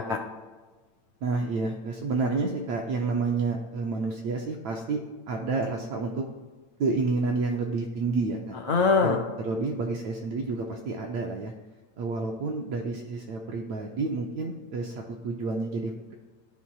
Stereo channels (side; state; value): left; late; 9.0 ms